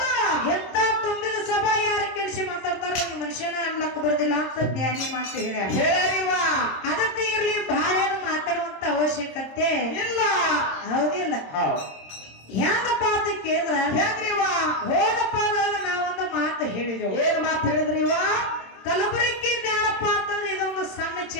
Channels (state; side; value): late; right; 26 ms